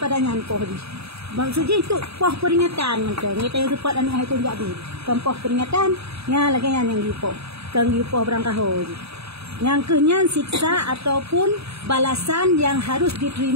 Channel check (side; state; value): left; late; 0.78 ms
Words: nyan poh di. Maksudnya itu poh peringatan macam kita yang cepat anak itu jadi. Kan poh peringatan nya lagi yang gipoh. Kan gipoh berangkahoi. Yang kenyan siksa ataupun balasan yang harus